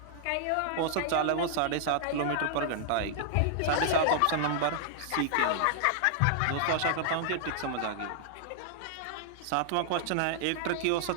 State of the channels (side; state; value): both; different; correlation -0.01